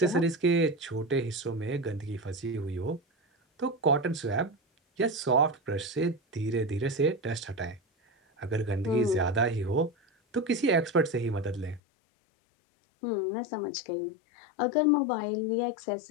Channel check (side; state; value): right; drops out; at 11.8 s